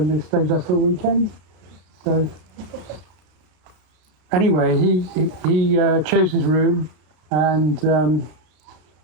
they stayed there for a weekend. So anyway, he chose his room, and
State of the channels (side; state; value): left; late; 32 ms